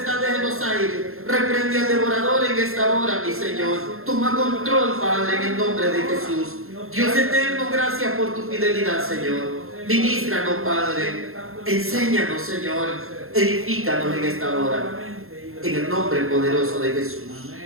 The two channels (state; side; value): late; left; 0.62 ms